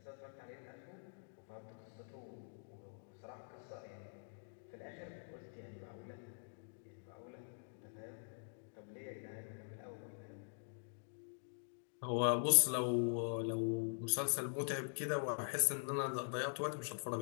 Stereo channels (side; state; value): right; silent; digital silence